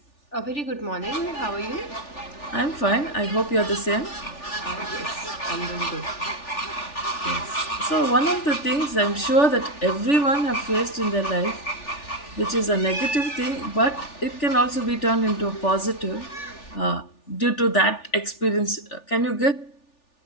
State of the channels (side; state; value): right; late; 3.4 ms